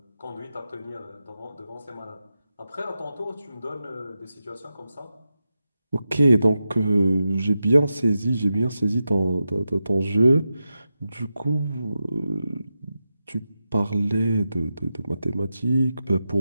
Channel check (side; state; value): both; inverted; correlation -0.90